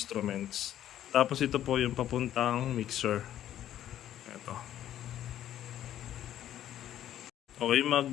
Tapos ito po yung papuntang mixer. Ito. Okay,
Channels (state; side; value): quieter; right; 11.7 dB